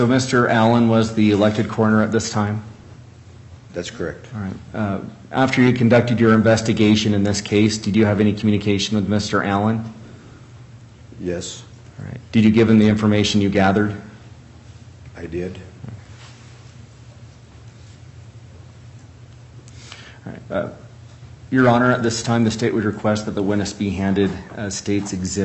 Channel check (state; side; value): identical; both; correlation 1.00